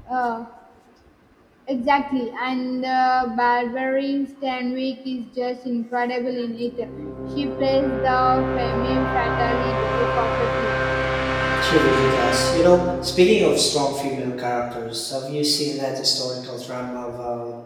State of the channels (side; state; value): both; identical; correlation 1.00